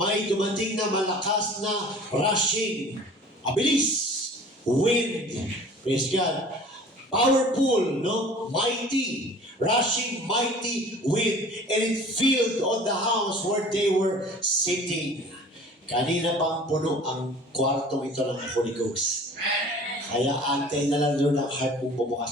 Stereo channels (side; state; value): both; normal; correlation 0.46